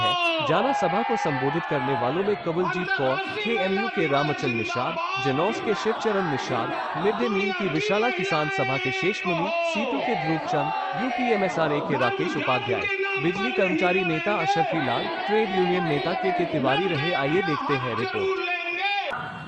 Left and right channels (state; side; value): identical; both; correlation 1.00